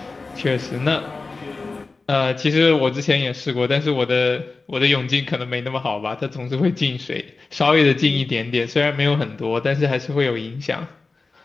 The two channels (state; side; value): quieter; right; 3.9 dB